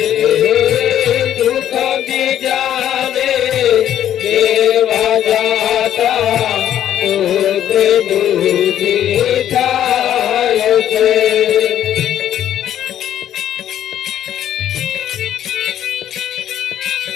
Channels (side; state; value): right; quieter; 11.0 dB